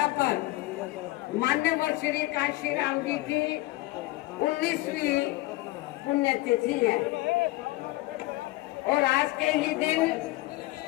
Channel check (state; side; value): quieter; right; 19.5 dB